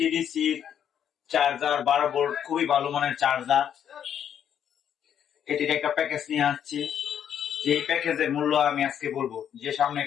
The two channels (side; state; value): right; quieter; 9.1 dB